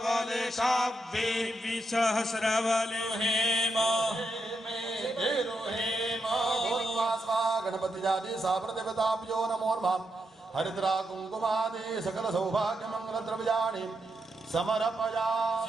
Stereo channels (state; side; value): normal; both; correlation 0.83